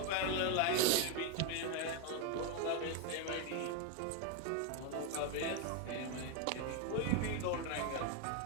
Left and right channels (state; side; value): different; both; correlation 0.01